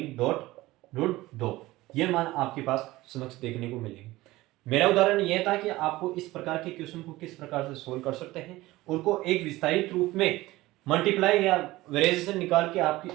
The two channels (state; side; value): quieter; left; 18.4 dB